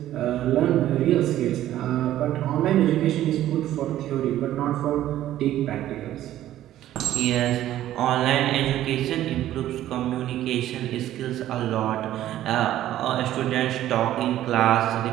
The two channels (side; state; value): left; quieter; 13.1 dB